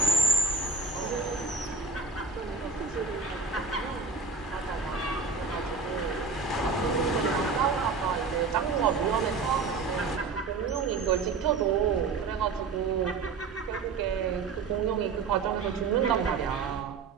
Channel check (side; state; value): left; quieter; 4.6 dB